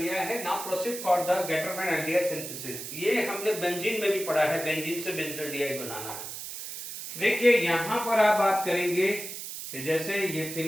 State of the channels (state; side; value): noise; right; hiss, 8 dB below the sound